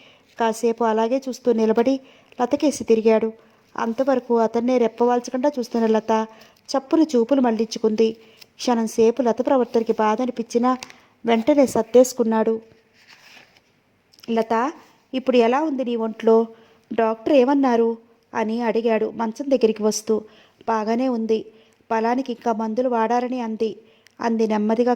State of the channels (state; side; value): identical; both; correlation 1.00